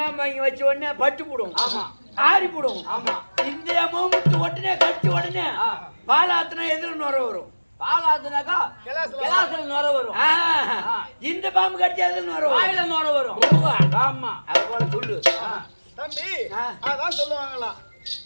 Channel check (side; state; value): both; inverted; correlation -1.00